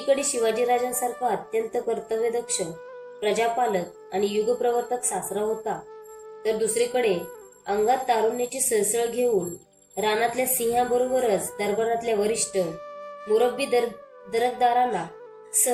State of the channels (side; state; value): both; identical; correlation 1.00